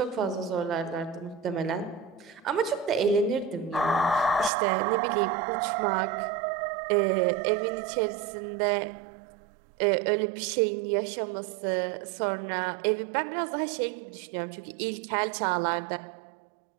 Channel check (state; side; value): drops out; left; at 4.5 s